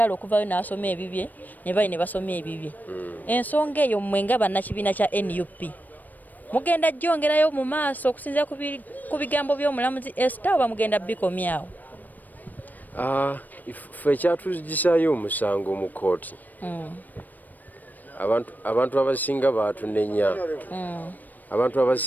okuvayo n'asoma ebibye ne bayi ne basoma ebibye. Ensonga eyo mwe nga bannakibiina kya NUP mugenda gyongerayo mu maaso okusinziira ku bigambo by'omulamuzi Esther oba mugenda bikomyawo? Ffe ekyatugisaayo omusango mu kkooti, abantu abasinga baatunenya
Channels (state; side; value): late; right; 0.085 ms